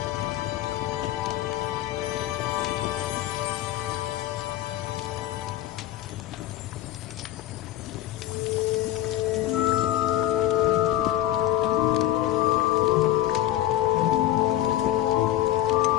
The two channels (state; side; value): quieter; right; 13.8 dB